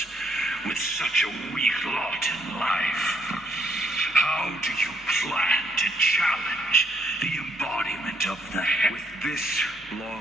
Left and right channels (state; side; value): normal; both; correlation 0.71